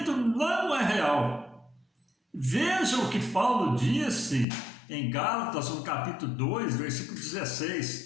não é real. Veja o que Paulo disse em Gálatas, no capítulo 2, versículo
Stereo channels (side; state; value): right; drops out; at 4.5 s